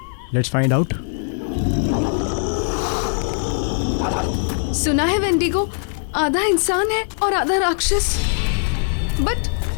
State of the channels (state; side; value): silent; right; 65 dB below the other